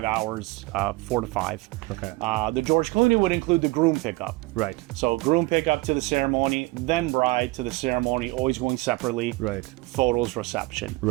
hours, 4 to 5. Okay. The George Clooney would include the groom pickup. Right. So groom pickup to the ceremony, then bride to the ceremony, always going separately. Right. Photos, reception.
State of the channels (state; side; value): quieter; left; 22.2 dB